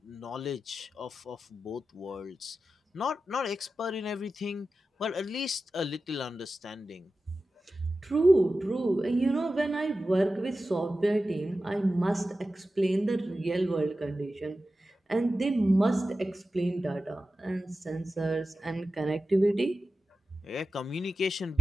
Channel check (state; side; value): normal; both; correlation 0.93